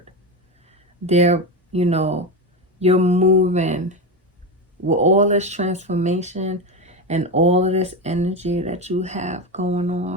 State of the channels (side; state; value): both; normal; correlation 0.16